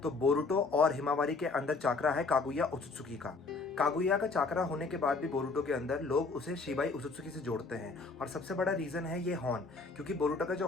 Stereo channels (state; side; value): quieter; right; 4.0 dB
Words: तो बोरुटो और हिमावारी के अंदर चाकरा है कागुया ओत्सुकी का। कागुया का चाकरा होने के बाद भी बोरुटो के अंदर लोग उसे शिबाई ओत्सुकी से जोड़ते हैं, और सबसे बड़ा रीजन है ये हॉर्न। क्योंकि बोरुटो का जो